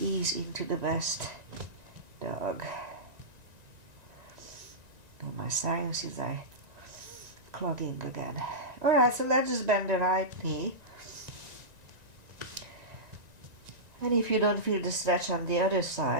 into the best dog. Oh, my sinuses are clogging again. Alright, so let's just bend the right knee. And if you don't feel the stretch on the other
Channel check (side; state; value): left; late; 1.9 ms